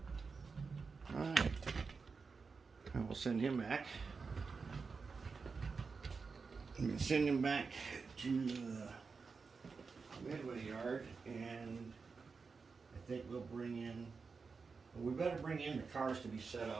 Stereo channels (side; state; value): left; quieter; 4.9 dB